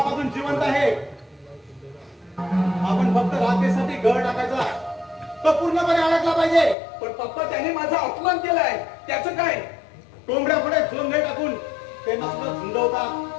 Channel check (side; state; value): right; drops out; at 6.8 s